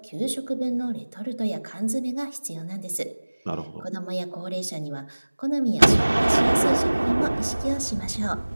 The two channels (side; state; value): both; inverted; correlation -1.00